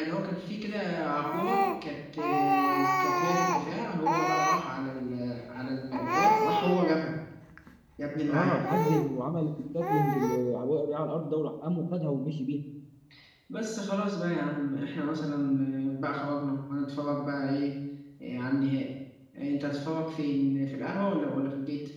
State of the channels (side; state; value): both; identical; correlation 1.00